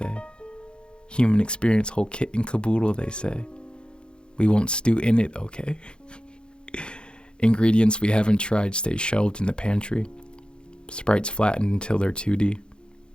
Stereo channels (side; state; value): right; late; 0.051 ms